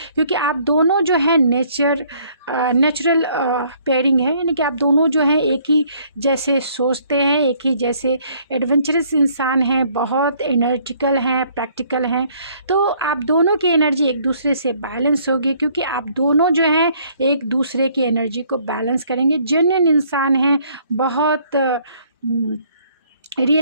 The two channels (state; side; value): inverted; both; correlation -0.62